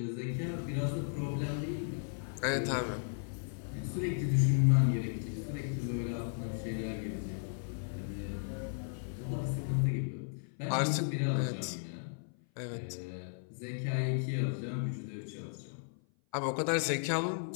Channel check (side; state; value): right; silent; 54 dB below the other